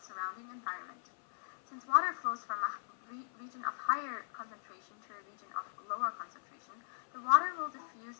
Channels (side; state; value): right; silent; 52 dB below the other